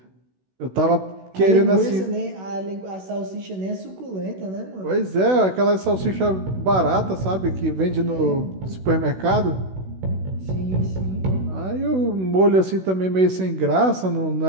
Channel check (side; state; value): left; late; 16 ms